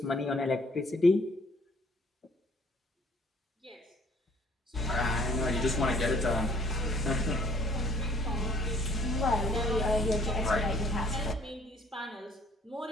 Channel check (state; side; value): normal; both; correlation 0.59